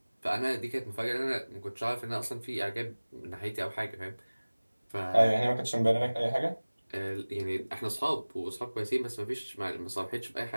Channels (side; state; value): both; inverted; correlation -1.00